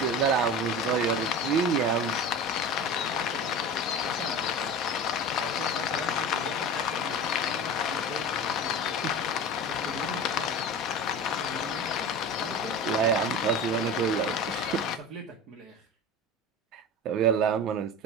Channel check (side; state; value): both; normal; correlation 0.32